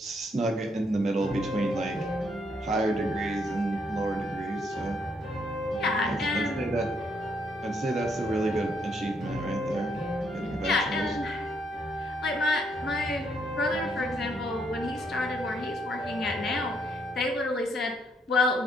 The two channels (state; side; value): normal; both; correlation 0.72